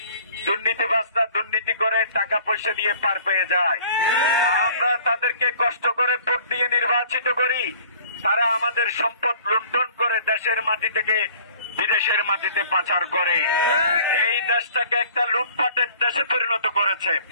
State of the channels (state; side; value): inverted; both; correlation -0.51